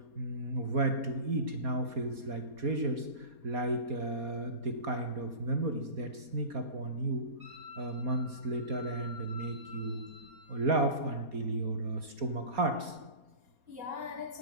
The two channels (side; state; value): left; late; 4.2 ms